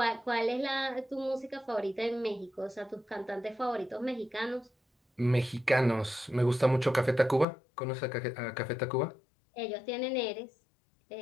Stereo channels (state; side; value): drops out; right; at 7.5 s